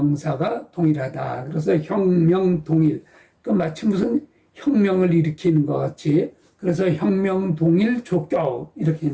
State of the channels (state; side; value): identical; both; correlation 1.00